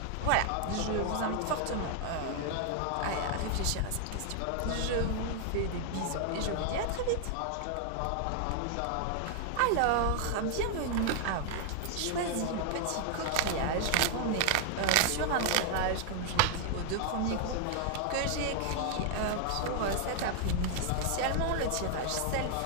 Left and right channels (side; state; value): both; different; correlation 0.00